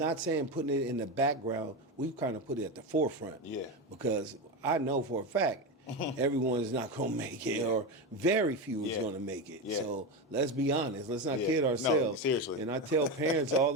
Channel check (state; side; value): normal; both; correlation 0.17